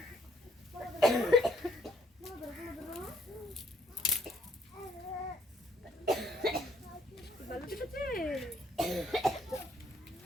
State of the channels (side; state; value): both; normal; correlation 0.67